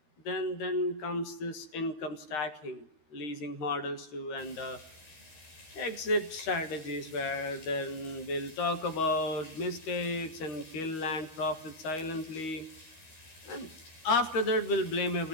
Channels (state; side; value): late; right; 13 ms